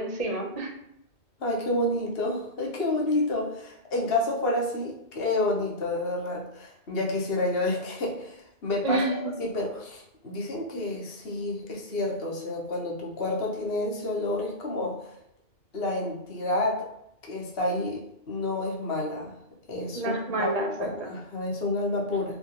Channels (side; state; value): right; late; 2.7 ms